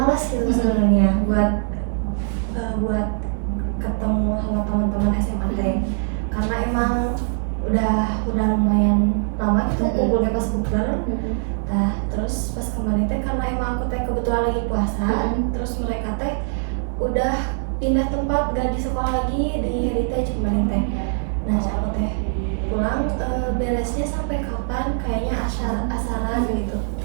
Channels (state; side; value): silent; left; 64 dB below the other